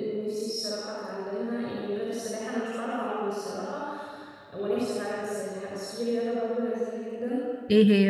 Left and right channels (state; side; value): identical; both; correlation 1.00